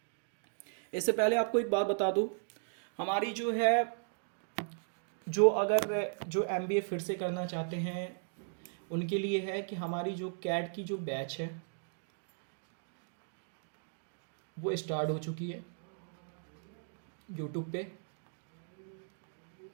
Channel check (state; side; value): silent; left; digital silence